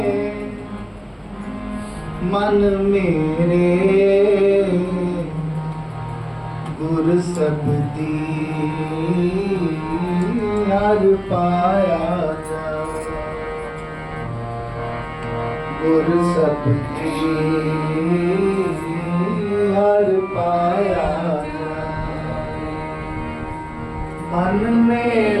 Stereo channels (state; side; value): identical; both; correlation 1.00